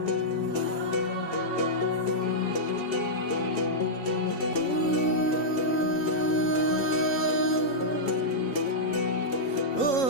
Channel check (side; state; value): right; late; 3.8 ms